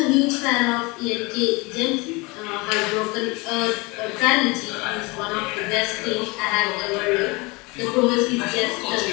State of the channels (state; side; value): quieter; right; 26.1 dB